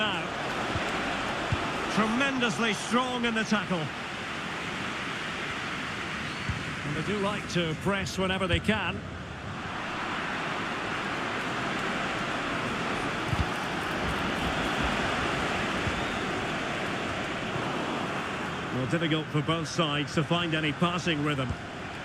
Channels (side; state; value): both; identical; correlation 1.00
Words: Tremendously strong in the tackle. And they do like to press whenever they can. Well, difficult for both sides to find any passing rhythm.